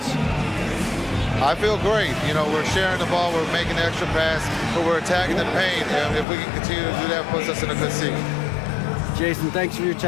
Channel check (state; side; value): drops out; right; at 6.2 s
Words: I feel great. You know, we're sharing the ball, we're making the extra pass, but we're attacking the paint. And if we can continue to do that, puts us in a good seat. Jason, thanks for your